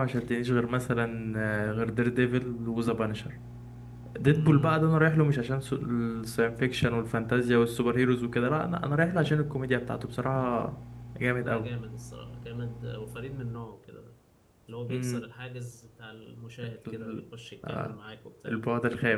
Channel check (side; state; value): both; identical; correlation 1.00